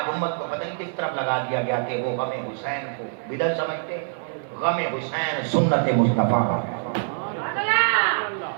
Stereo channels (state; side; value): silent; left; digital silence